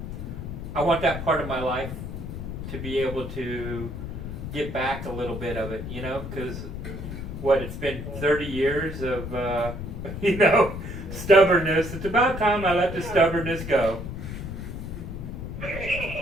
I want that part of my life to be able to get back a little bit of it, you know, because it's been 30 years of, you know, stubbornness. It's about time I let the stubbornness go.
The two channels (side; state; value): left; noise; rumble, 7 dB below the sound